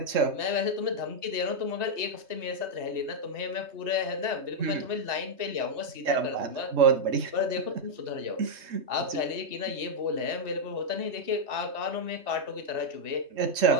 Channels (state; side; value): late; left; 3.2 ms